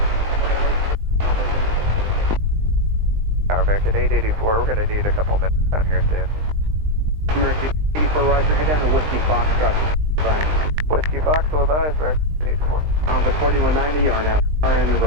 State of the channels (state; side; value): late; left; 20 ms